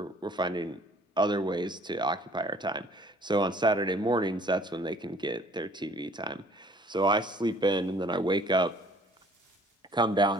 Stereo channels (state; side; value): normal; both; correlation 0.55